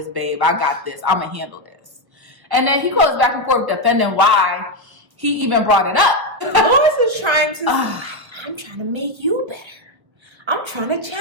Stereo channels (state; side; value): late; left; 1.4 ms